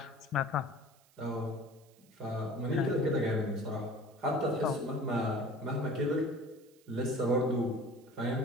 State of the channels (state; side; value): noise; right; hiss, 30 dB below the sound